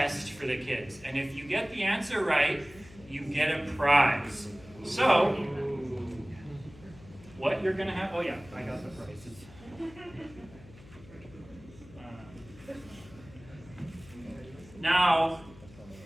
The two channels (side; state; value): left; noise; hum, 21 dB below the sound